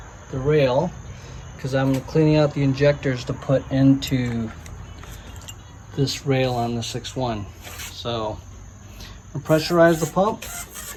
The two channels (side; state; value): both; identical; correlation 1.00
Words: the rail because I'm cleaning out the injectors to put into this rail on the 6.1. So, I'll pressurize the pump.